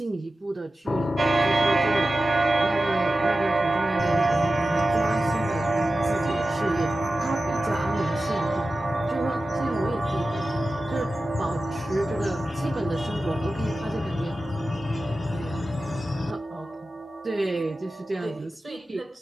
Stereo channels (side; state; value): both; normal; correlation 0.94